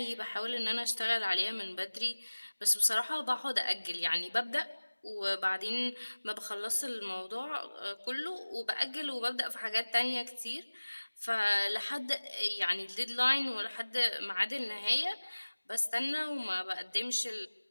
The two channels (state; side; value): inverted; both; correlation -1.00